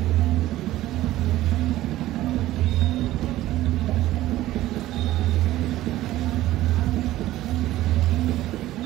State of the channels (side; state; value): left; quieter; 15.4 dB